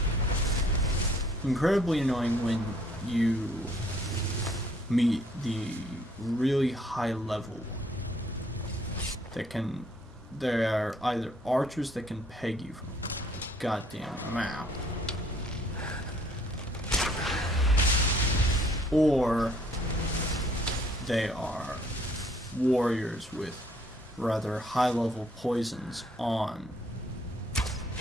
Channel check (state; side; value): normal; both; correlation 0.62